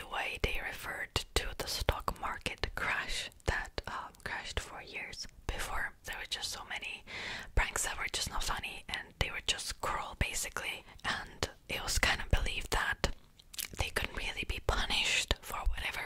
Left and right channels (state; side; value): identical; both; correlation 1.00